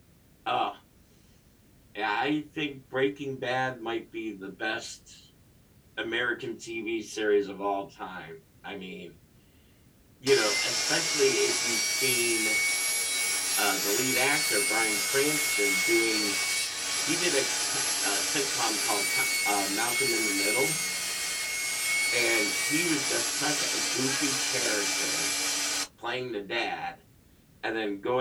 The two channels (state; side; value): identical; both; correlation 1.00